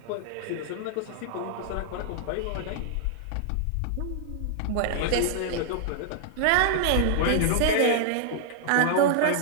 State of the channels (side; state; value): both; different; correlation -0.01